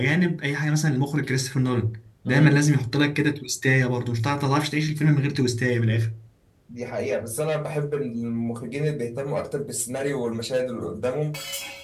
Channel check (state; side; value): identical; both; correlation 1.00